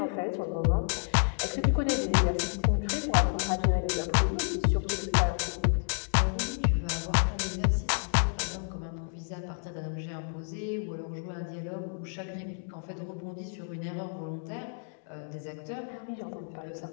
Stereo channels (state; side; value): silent; right; digital silence